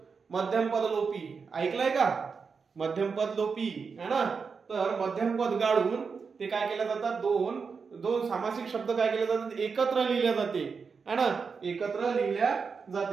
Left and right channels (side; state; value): left; quieter; 5.4 dB